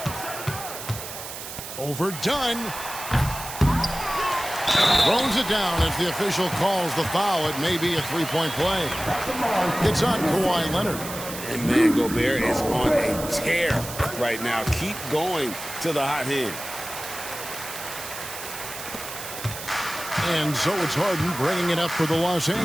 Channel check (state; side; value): noise; right; hiss, 10 dB below the sound